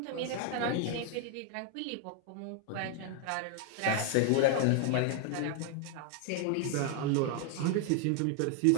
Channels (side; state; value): both; different; correlation 0.01